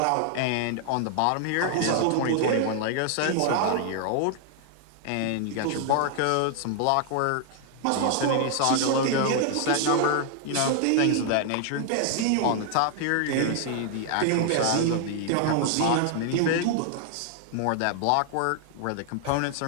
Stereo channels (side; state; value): both; different; correlation 0.00